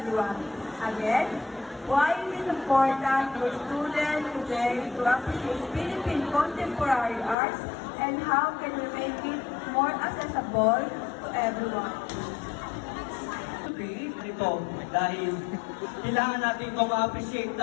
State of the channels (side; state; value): right; drops out; at 7.4 s